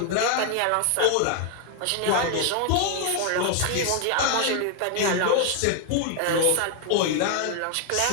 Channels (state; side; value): different; both; correlation 0.00